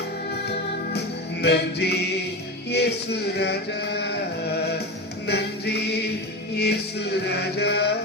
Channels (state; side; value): normal; both; correlation 0.23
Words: நன்றி இயேசு ராஜா, நன்றி இயேசு ராஜா,